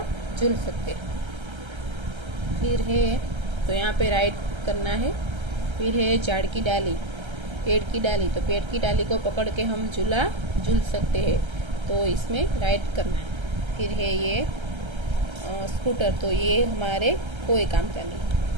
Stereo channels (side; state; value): left; late; 1.3 ms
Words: झूल सकते। फिर है, तो यहाँ पे राइट करना है। फिर है झाड़ की डाली, पेड़ की डाली, तो पेड़ की डाली को पकड़ के हम झूला झूल सकते हैं, तो इसमें राइट करना है। फिर है ये स्कूटर, तो ये हमारे कोई काम का नहीं।